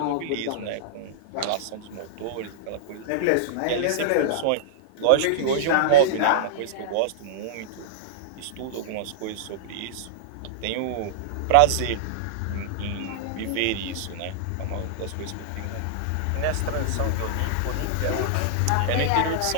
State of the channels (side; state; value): both; different; correlation -0.02